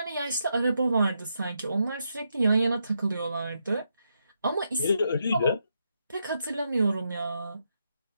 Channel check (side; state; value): both; inverted; correlation -0.82